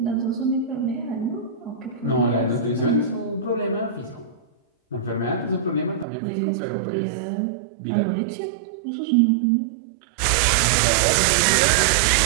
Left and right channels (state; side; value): drops out; left; at 6.1 s